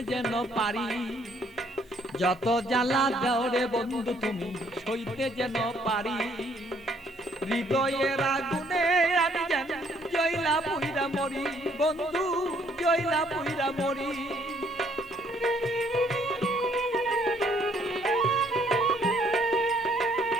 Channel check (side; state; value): both; normal; correlation 0.66